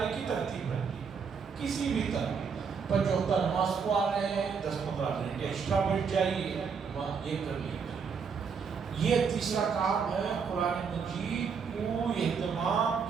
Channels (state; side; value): quieter; left; 6.0 dB